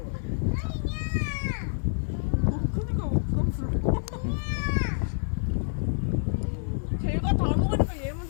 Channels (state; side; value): silent; right; 60 dB below the other